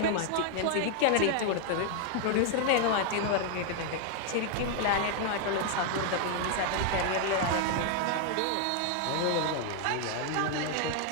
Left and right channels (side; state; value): both; different; correlation 0.00